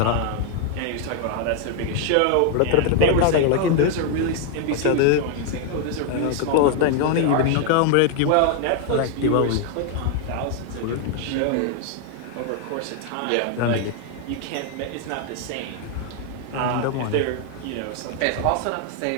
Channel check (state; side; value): different; both; correlation 0.00